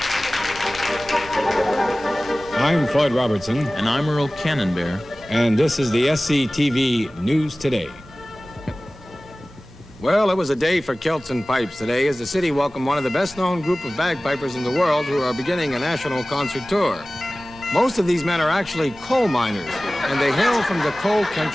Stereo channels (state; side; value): normal; both; correlation 0.98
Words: I'm Floyd Robertson. And I'm Earl Cannonbear. And this is the SCTV News Today. Well, it was a day for kilts and pipes today as the city welcomed one of the best-known group of bagpipers in the world who are beginning a national concert tour. Most of these men are actually coal miners, and they hail from the coal